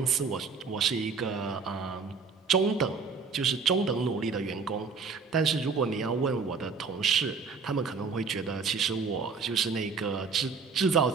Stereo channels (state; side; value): quieter; left; 5.1 dB